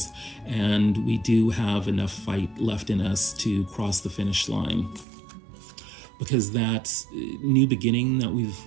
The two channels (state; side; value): drops out; left; at 5.1 s